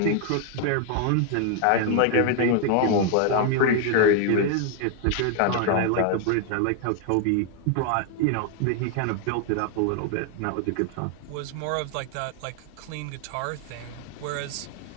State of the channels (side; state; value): both; different; correlation 0.00